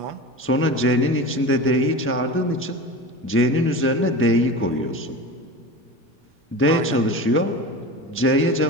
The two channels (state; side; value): normal; both; correlation 0.30